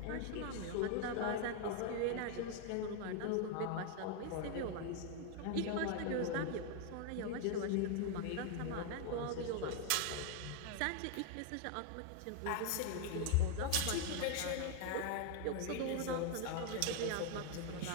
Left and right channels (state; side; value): different; both; correlation 0.01